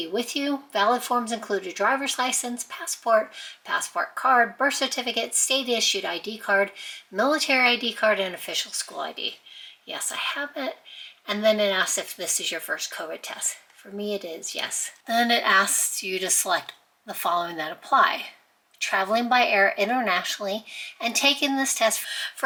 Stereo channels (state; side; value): identical; both; correlation 1.00